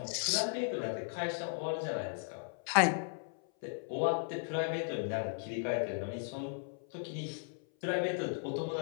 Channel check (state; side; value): silent; right; 54 dB below the other